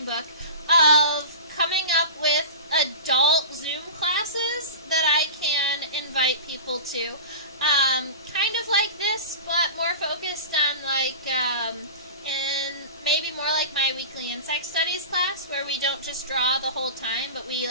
book, of coming up with adult Zoom classes that I can invite people to. Kind of like this, but more focused on and maybe more like my weekly insect studies class, where we don't just draw the whole time, but we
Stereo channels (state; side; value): inverted; both; correlation -0.33